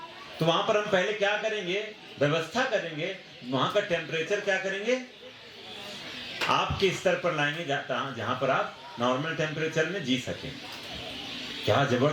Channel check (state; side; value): identical; both; correlation 1.00